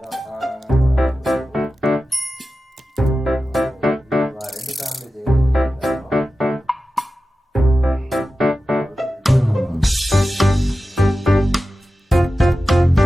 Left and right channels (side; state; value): both; normal; correlation 0.94